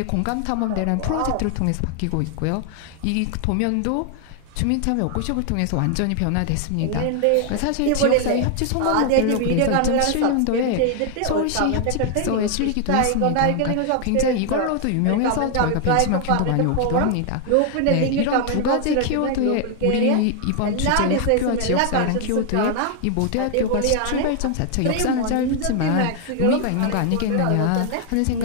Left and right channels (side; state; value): both; different; correlation 0.00